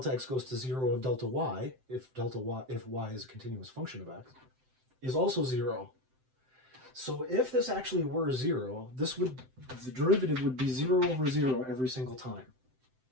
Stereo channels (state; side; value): late; left; 7.8 ms